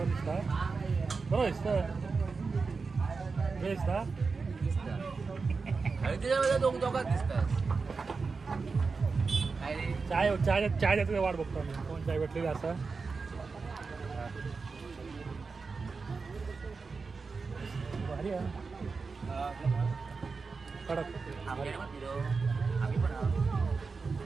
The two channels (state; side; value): quieter; left; 4.6 dB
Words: दिसता. बरोबर दिसता त्याच्यामध्ये दोघात दिसतात. चाय चाय चाय द्यायचं वाट बघतो आम्ही. कोण चाय भेटलेली असं भारी आहे कडक